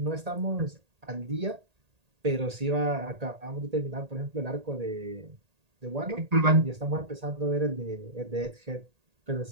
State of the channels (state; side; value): late; left; 1.8 ms